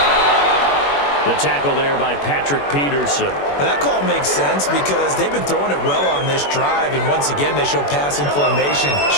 The tackle there by Patrick Peterson. Well, that call makes sense because they've been throwing it well on this drive, and once again they show passing formation,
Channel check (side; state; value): right; late; 21 ms